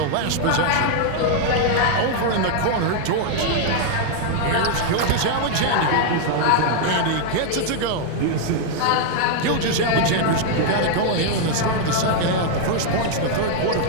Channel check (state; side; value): different; both; correlation 0.00